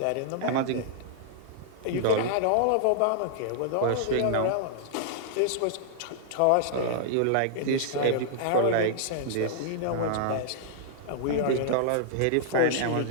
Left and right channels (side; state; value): both; different; correlation -0.01